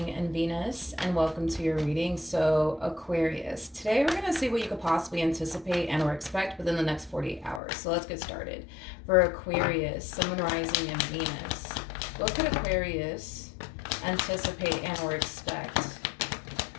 and Venus, and welcome to your reading. So, Aquarius, today we're going to see what you could possibly anticipate and or expect within the next 48 hours. So let's get started. For Aquarius, Sun, Moon, Rising, and Venus, what could Aquarius anticipate and or expect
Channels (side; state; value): right; drops out; at 7.6 s